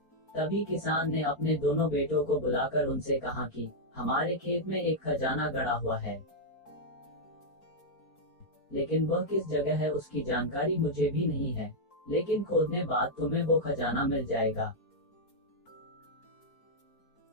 तभी किसान ने अपने दोनों बेटों को बुलाकर उनसे कहा कि हमारे खेत में एक खजाना गड़ा हुआ है, लेकिन वह किस जगह है उसकी जानकारी मुझे भी नहीं है, लेकिन खोदने बाद तुम्हें वो खजाना मिल जाएगा।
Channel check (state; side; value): late; right; 4.4 ms